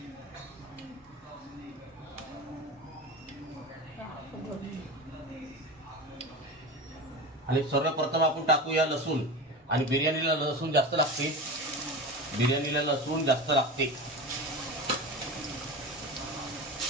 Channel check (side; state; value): both; normal; correlation 0.28